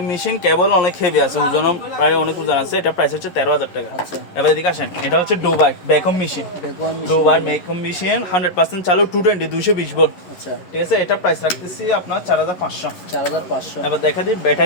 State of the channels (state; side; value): late; right; 11 ms